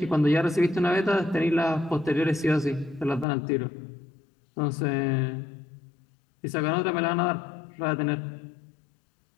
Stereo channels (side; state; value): right; drops out; at 3.2 s